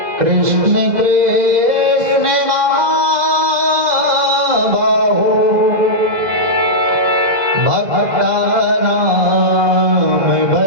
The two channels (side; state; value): left; late; 2.0 ms